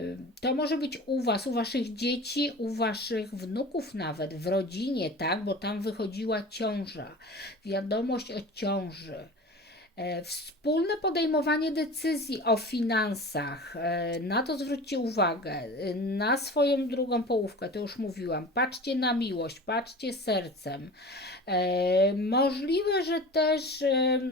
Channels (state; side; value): normal; both; correlation 0.36